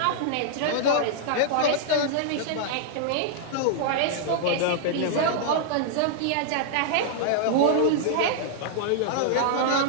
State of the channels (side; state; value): both; different; correlation -0.01